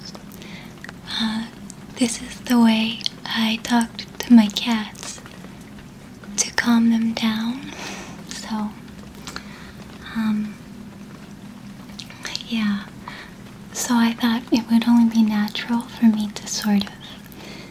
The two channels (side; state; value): both; identical; correlation 1.00